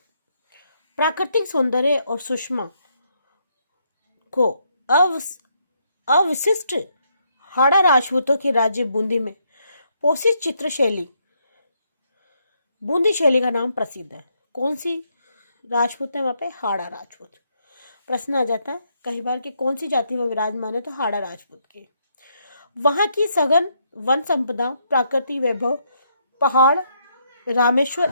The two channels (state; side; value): inverted; both; correlation -0.75